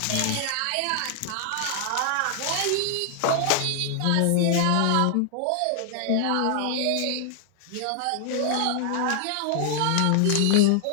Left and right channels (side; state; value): both; different; correlation 0.00